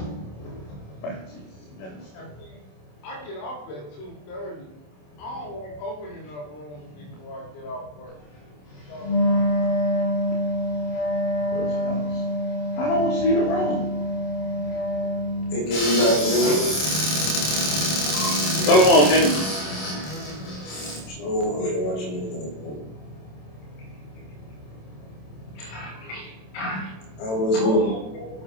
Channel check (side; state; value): right; late; 27 ms